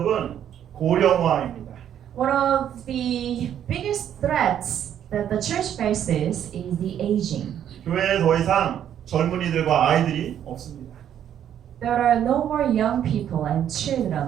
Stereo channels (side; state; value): left; quieter; 10.0 dB